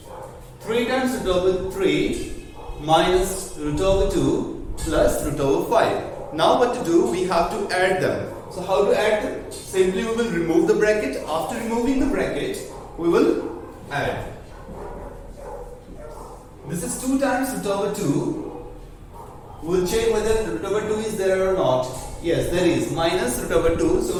3 times root over 3 minus root over 2 plus root over 5. Now what to do? We have to add them. So how to add them? Simply we will remove the bracket. After removing the bracket, we will add. This is 2 times root over 2. We'll check whether root over 2 is there or not. Yes, there is. Minus root over 2. So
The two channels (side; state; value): both; identical; correlation 1.00